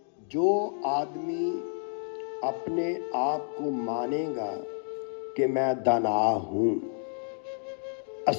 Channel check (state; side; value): silent; right; digital silence